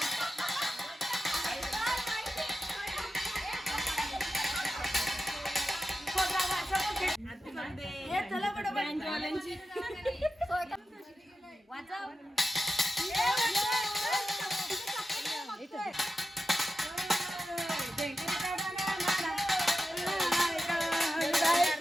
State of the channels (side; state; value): both; normal; correlation 0.92